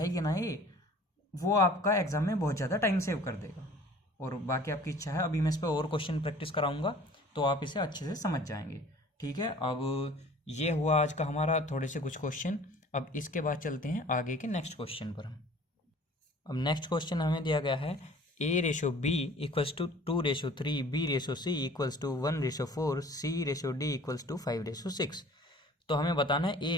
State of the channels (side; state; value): both; normal; correlation 0.49